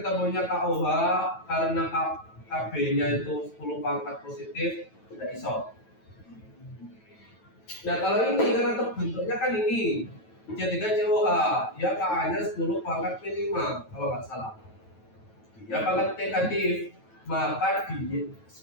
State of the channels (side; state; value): right; late; 9.1 ms